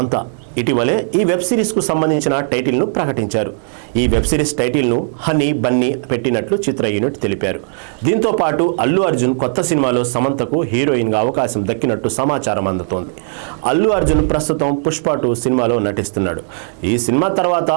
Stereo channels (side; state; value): left; silent; 61 dB below the other